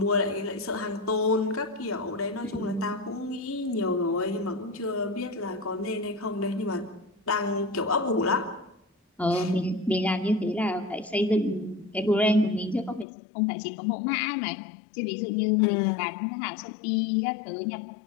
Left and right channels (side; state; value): right; drops out; at 13.1 s